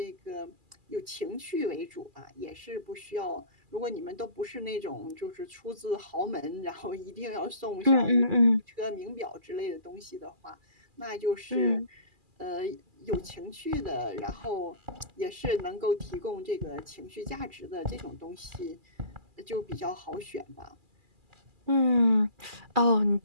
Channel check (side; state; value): left; late; 2.4 ms